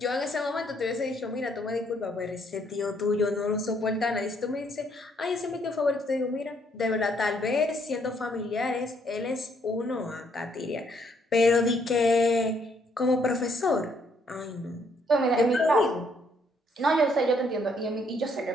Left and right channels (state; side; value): normal; both; correlation 0.69